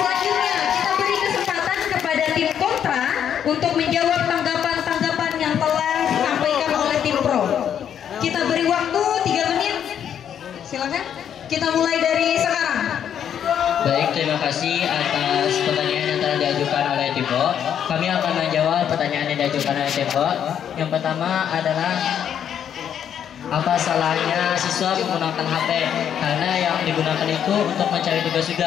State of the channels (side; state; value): right; quieter; 9.0 dB